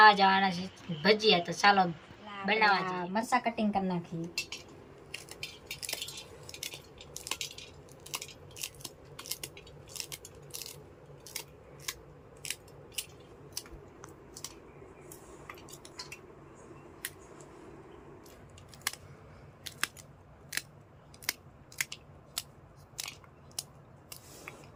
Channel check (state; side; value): identical; both; correlation 1.00